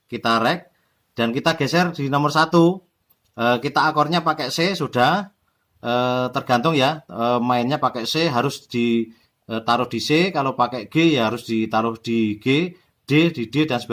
kita rek dan kita geser di nomor 1. Kita akornya pakai C sudah, tergantung ya, mainnya pakai C harus ditaruh di C, kalau pakai G ya harus ditaruh di G, D di D dan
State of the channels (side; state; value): both; identical; correlation 1.00